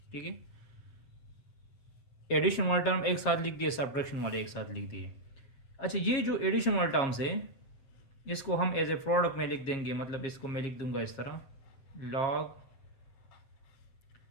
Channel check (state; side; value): late; right; 7.4 ms